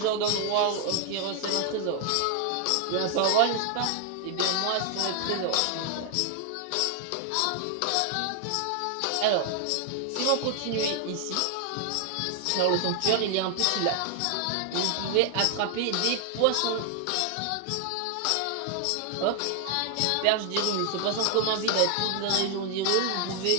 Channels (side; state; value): both; different; correlation 0.00